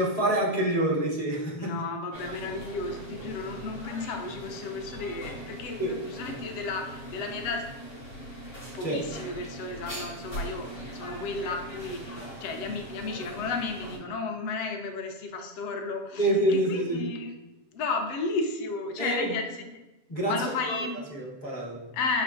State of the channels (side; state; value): right; late; 7.3 ms